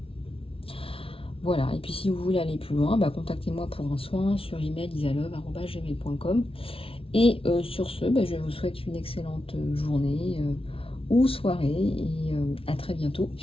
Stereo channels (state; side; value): late; right; 0.26 ms